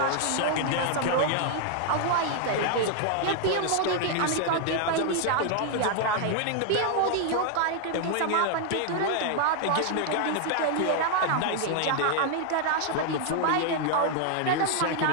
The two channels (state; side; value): different; both; correlation 0.00